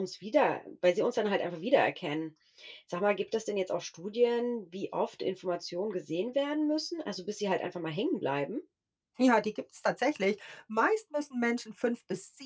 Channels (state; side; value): identical; both; correlation 1.00